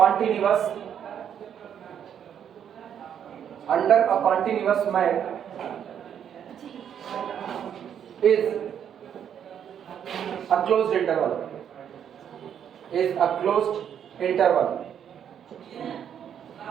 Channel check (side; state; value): left; quieter; 8.9 dB